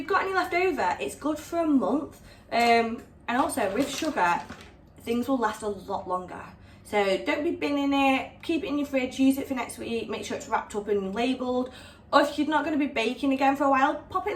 got any left over, it's good for a month. And also with sugar, things will last a lot longer. So don't be binning it, keep it in your fridge, use it for next week, make sure it's wrapped up and labelled. Or if you're not going to be baking again for a while, pop it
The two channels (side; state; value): both; identical; correlation 1.00